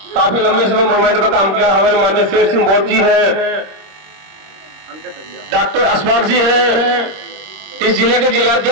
काफी लंबे समय मूवमेंट में काम किया, हमारे माननीय शेर सिंह बोध जी हैं, डॉक्टर अशफाक जी हैं, इस जिले के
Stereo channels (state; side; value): late; left; 26 ms